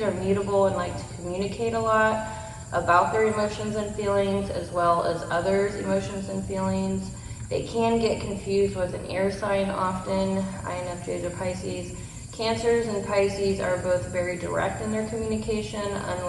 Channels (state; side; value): identical; both; correlation 1.00